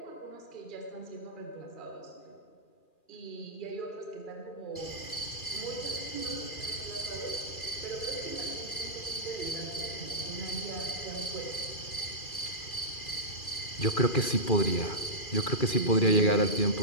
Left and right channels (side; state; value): right; late; 2.4 ms